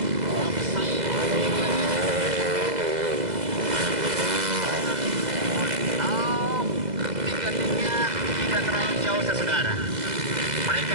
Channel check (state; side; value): late; left; 2.0 ms